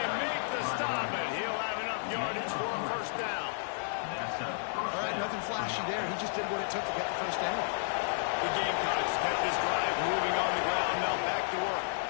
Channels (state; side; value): silent; right; 56 dB below the other